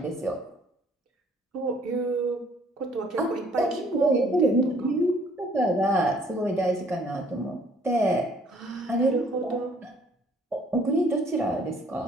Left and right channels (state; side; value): normal; both; correlation 0.61